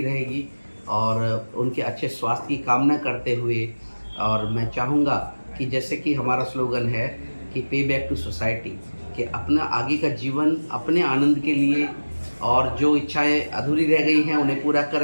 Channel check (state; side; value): inverted; both; correlation -1.00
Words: रहेगी। और उनके अच्छे स्वास्थ्य की कामना करते हुए, और मैं चाहूँगा कि जैसे कि हमारा स्लोगन है कि पे बैक टू सोसाइटी, कि अपना आगे का जीवन अपने आनंद के लिए, और जो इच्छाएं अधूरी रह गई हैं उन्हें पूरा